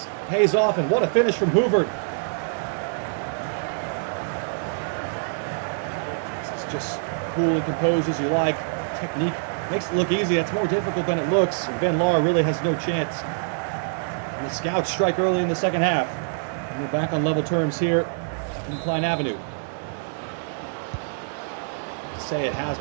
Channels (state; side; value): silent; left; digital silence